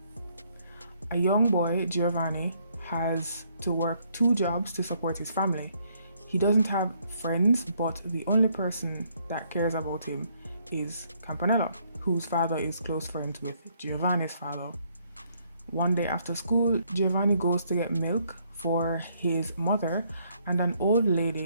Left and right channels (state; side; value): inverted; both; correlation -0.69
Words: A young boy, Giovanni, has to work 2 jobs to support his family. He doesn't have friends, but the only person that cares about him is Campanella, whose father is close friends with Giovanni's father. One day after school, Giovanni goes to get milk for his mother, and an old